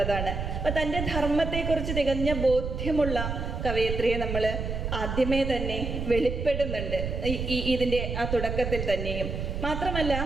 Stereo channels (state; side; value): noise; right; rumble, 4 dB below the sound